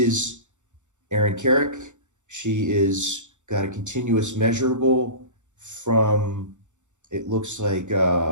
Erin Carrick. She is got a continuous measurable from, it looks like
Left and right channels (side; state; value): left; late; 0.85 ms